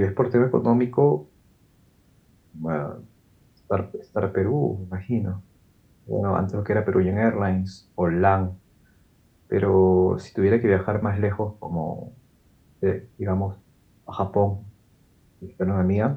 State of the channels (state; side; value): identical; both; correlation 1.00